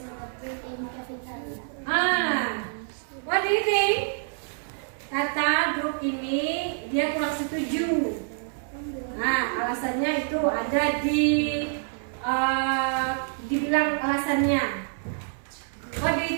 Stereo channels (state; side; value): silent; left; 60 dB below the other